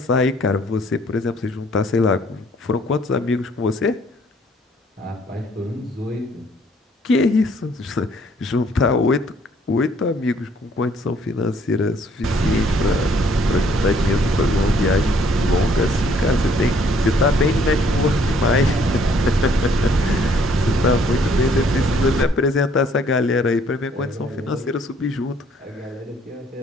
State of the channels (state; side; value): normal; both; correlation 0.63